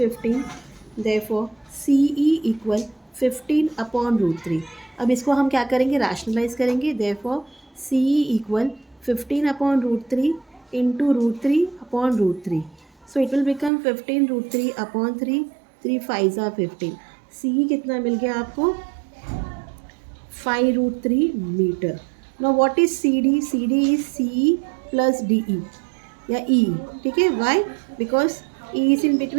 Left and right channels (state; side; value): drops out; left; at 13.7 s